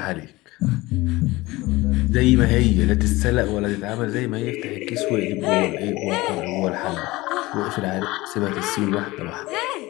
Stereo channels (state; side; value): quieter; right; 20.3 dB